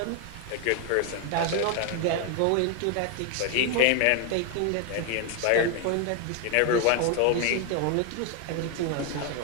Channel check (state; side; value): different; both; correlation 0.01